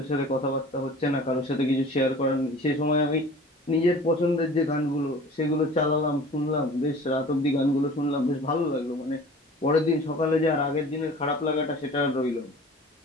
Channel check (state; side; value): normal; both; correlation 0.43